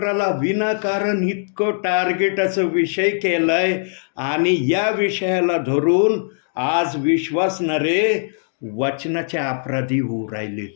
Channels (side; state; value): right; silent; digital silence